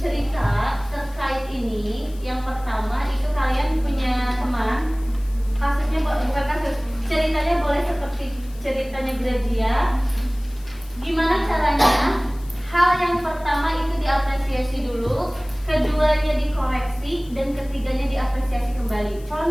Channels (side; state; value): left; noise; hiss, 24 dB below the sound